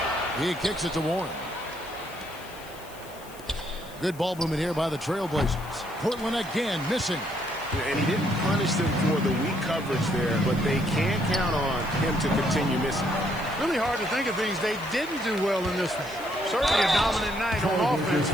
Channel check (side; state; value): left; noise; hiss, 20 dB below the sound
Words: He kicks it to Warren. Good ball movement here by the Trailblazers. Portland again missing. And he didn't punish them for the weak coverage there, but they can't count on him to continue missing. Really hard to think of things they didn't do well in this one. Certainly a dominant night on offense